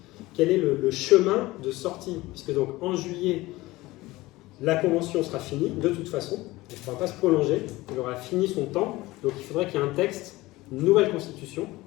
Quel est le chemin de sortie? Puisque donc, en juillet, la Convention sera finie, de toute façon. Elle ne pourra pas se prolonger. Elle aura fini son temps. Donc, il faudrait qu'il y ait un texte, une nouvelle constitution,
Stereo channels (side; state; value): right; quieter; 19.3 dB